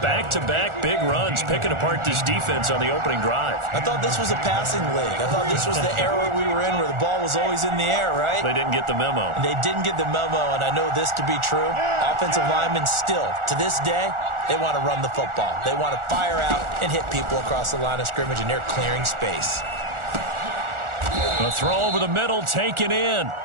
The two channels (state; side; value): late; left; 1.4 ms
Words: big runs, picking apart this defense on the opening drive. I thought this was a passing league. I thought this was the era we were in where the ball was always in the air, right? They didn't get the memo. They didn't get the memo, and I know this to be true. Offensive linemen still, to this day, they want to run the football. They want to fire out and hit people across the line of scrimmage, and they're clearing space. The throw over the middle, taken in.